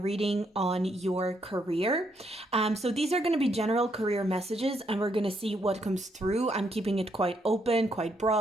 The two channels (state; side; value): normal; both; correlation 0.75